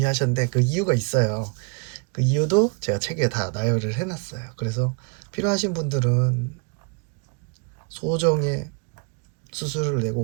그 이유가 있어요. 그 이유도 제가 책에 다 나열을 해놨어요. 그래서 필요하신 분들은 소정의 수수료를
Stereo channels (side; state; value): left; quieter; 35.4 dB